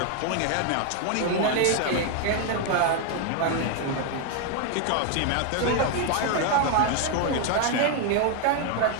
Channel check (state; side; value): different; both; correlation 0.01